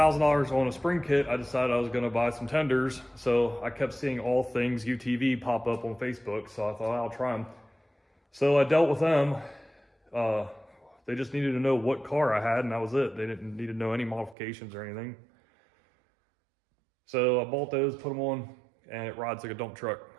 on a spring kit, I decided I was gonna buy some tenders. So I kept seeing All Things UTV pop up on Facebook, so I thought I'll try them. So I dealt with them. They just needed to know what car I had, and that was it. They didn't need to know any modifications or anything. So I bought those, put them on, and it rides like a dump truck.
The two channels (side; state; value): left; drops out; at 14.4 s